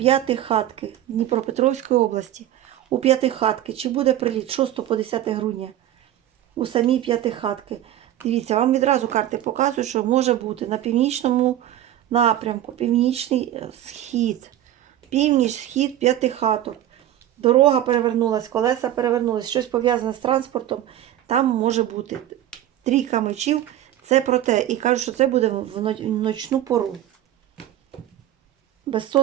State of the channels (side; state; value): left; quieter; 12.5 dB